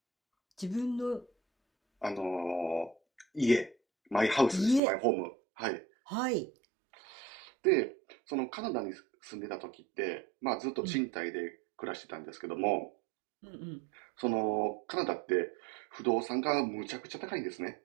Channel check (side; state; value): left; drops out; at 4.8 s